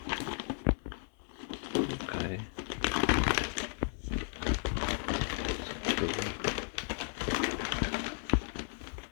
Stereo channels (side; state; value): right; silent; 55 dB below the other